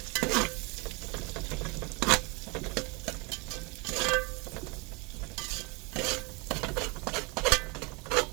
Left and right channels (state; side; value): quieter; left; 27.8 dB